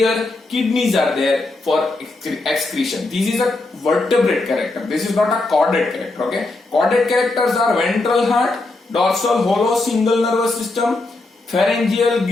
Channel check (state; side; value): quieter; right; 3.1 dB